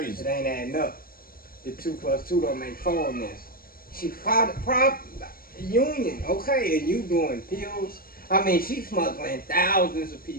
it ain't adding up. The 2 plus 2 don't make 4 on this. She filed a prop union, okay, and you doing pills. I mean, she smuggling thousands of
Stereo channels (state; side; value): late; right; 0.42 ms